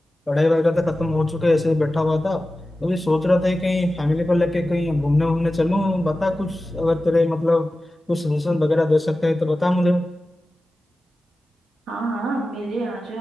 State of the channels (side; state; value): both; normal; correlation 0.95